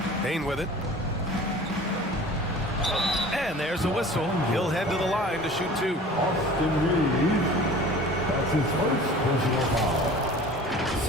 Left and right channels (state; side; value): normal; both; correlation 0.43